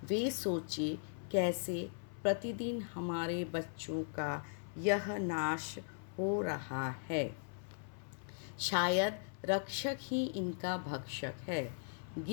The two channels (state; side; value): silent; right; 52 dB below the other